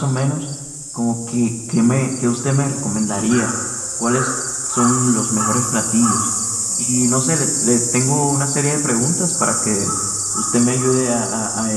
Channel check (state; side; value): identical; both; correlation 1.00